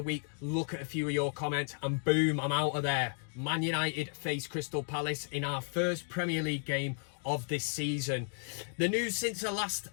week. Look at a few of your comments and boom, I'm out of there. ManUtd face Crystal Palace in our first Premier League game of this season. The news since I last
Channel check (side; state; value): right; silent; 55 dB below the other